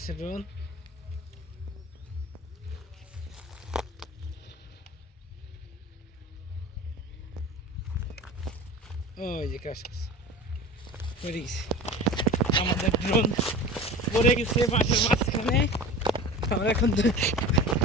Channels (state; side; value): normal; both; correlation 0.36